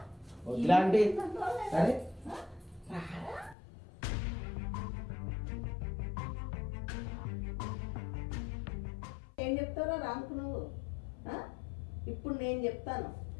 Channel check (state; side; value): drops out; right; at 3.6 s